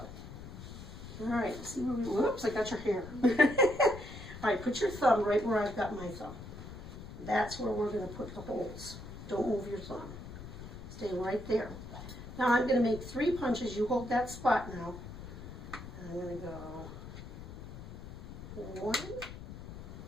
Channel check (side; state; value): left; noise; rumble, 12 dB below the sound